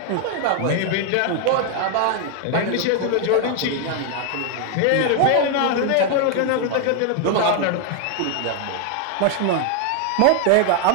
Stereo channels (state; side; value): different; both; correlation 0.00